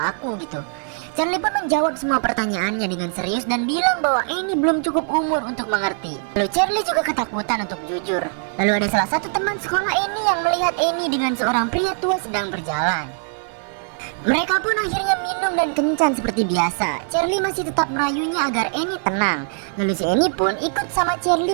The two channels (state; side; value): silent; left; 57 dB below the other